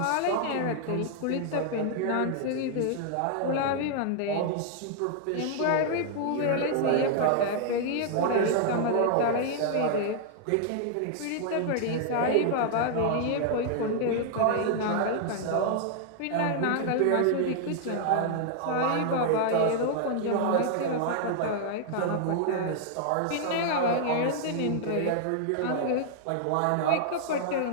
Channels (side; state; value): both; different; correlation 0.00